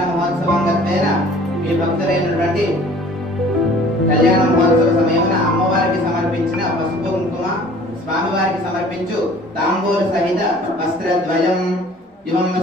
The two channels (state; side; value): normal; both; correlation 0.50